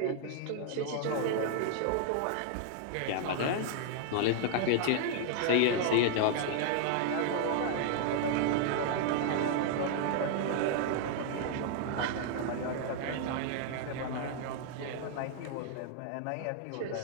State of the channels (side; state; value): both; different; correlation 0.00